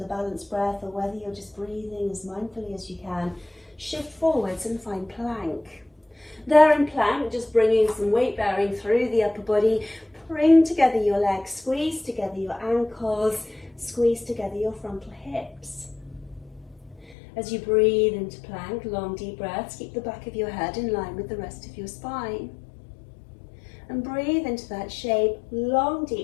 balanced breath, or whether you're just breathing as mindfully as you can. Shift forwards and find plank. There in plank, just bringing some weight bearing through the upper body. Bring together your legs, squeeze together your ankles, squeeze together your frontal hips. As you breathe into plank, long deep breaths, keep the back of your head in line with the rest of your spine. And breathe into that shape, long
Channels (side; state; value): right; drops out; at 17.2 s